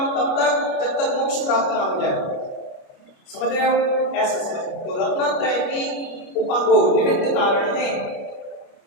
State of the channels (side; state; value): right; late; 29 ms